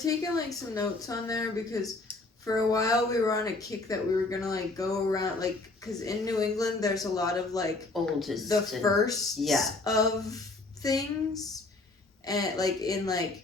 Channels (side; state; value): right; quieter; 3.2 dB